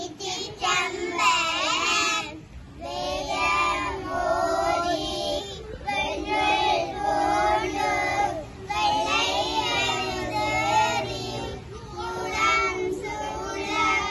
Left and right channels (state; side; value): identical; both; correlation 1.00